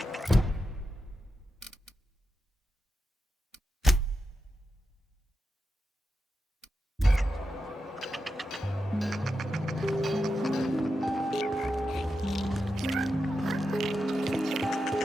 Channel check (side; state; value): both; normal; correlation 0.89